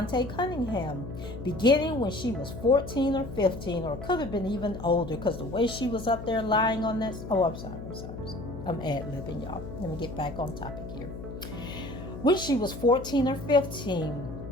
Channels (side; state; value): left; noise; hum, 10 dB below the sound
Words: Cunningham, beginning when she was 14 or 15, or could have been even older, because the way she was up there lying on that... I'm sorry. I'm ad-libbing, y'all. Let me get back on topic here. When she was 14 or 15,